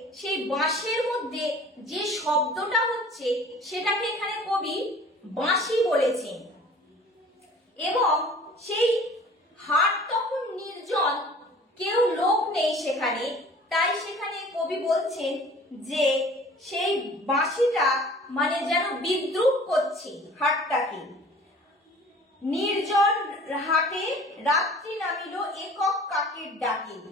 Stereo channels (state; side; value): normal; both; correlation 0.47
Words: সেই বাঁশের মধ্যে যে শব্দটা হচ্ছে সেটাকে এখানে কবি বাঁশি বলেছেন। এবং সেই হাট তখন নির্জন, কেউ লোক নেই সেখানে, তাই সেখানে কবি বলছেন যে সেই বাঁশিটা মানে যেন বিদ্রুপ করছে হাটটাকে। নির্জন হাটে রাত্রি নামিল একক কাকের ডাকে,